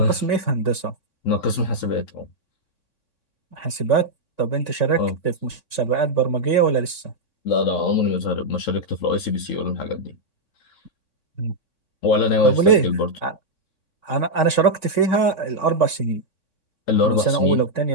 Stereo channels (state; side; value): late; right; 3.6 ms